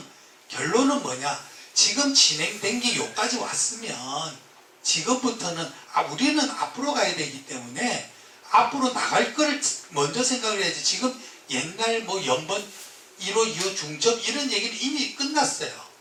결론은 뭐냐? 지금 진행된 게 여기까지 왔으면 지금부터는 우리는 앞으로 가야 되기 때문에 앞으로 나갈 거를 먼저 생각을 해야지. 지금 옛날 연번 1호, 2호 중첩 이런 얘기는 이미 끝났어요.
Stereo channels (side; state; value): both; identical; correlation 1.00